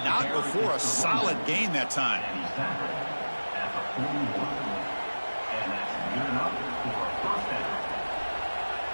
not before a solid gain that time.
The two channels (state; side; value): inverted; both; correlation -1.00